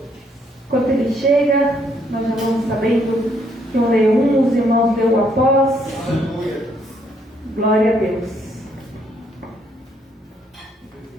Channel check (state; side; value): normal; both; correlation 0.70